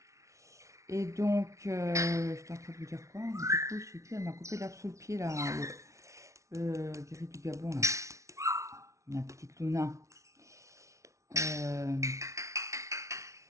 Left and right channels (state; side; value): late; left; 0.14 ms